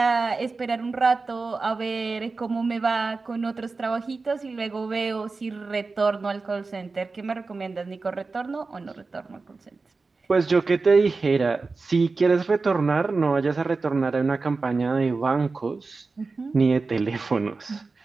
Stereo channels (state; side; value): quieter; left; 4.0 dB